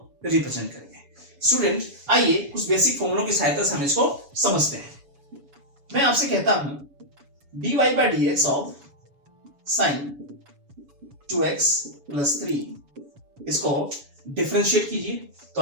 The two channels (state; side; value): late; left; 7.1 ms